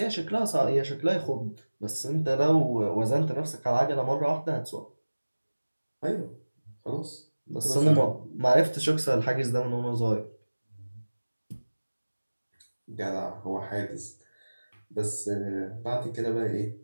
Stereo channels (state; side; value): inverted; both; correlation -1.00